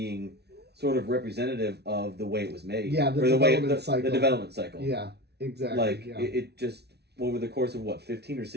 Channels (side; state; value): left; late; 0.49 ms